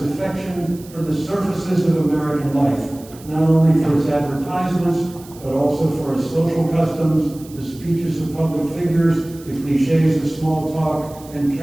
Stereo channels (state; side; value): noise; right; hiss, 22 dB below the sound